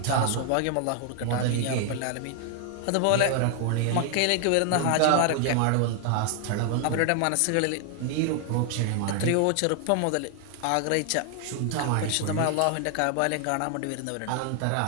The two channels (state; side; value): different; both; correlation 0.00